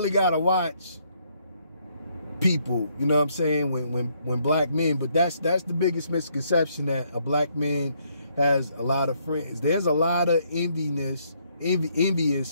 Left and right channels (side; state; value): both; inverted; correlation -0.71